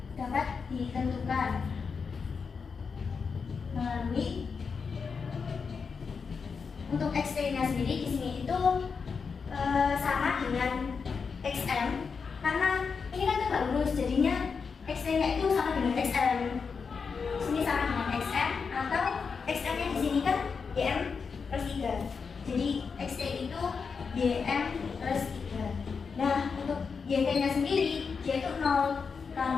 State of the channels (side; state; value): right; quieter; 5.5 dB